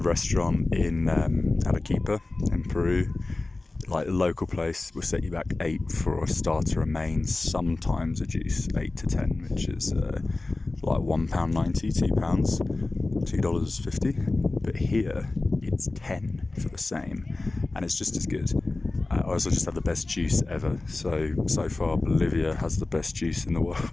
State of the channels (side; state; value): right; quieter; 3.2 dB